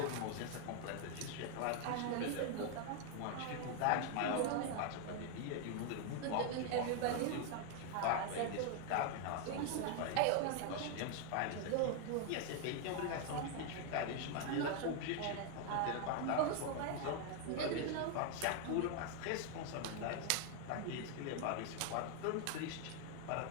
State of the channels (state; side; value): different; both; correlation 0.00